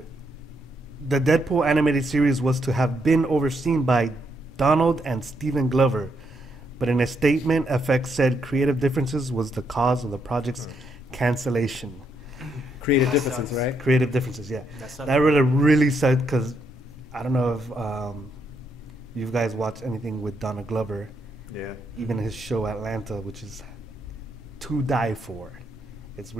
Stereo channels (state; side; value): normal; both; correlation 0.77